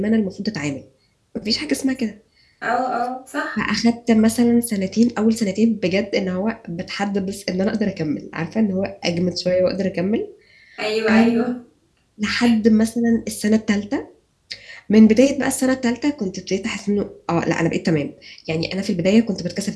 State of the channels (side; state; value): both; identical; correlation 1.00